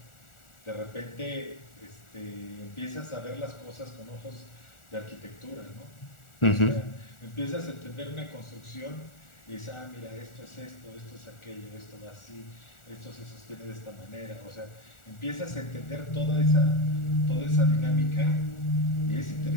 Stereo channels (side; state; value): right; late; 1.4 ms